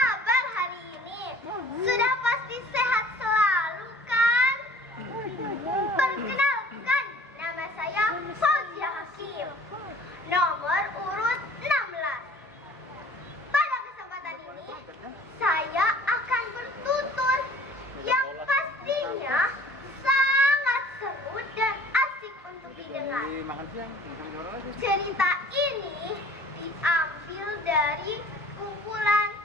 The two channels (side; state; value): both; normal; correlation 0.50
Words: hari ini? Sudah pasti sehat selalu kan? Perkenalkan, nama saya Fauzia Hakim, nomor urut 16. Pada kesempatan ini, saya akan bertutur yang pastinya sangat seru dan asik untuk didengar. Cerita ini diambil dari kumpulan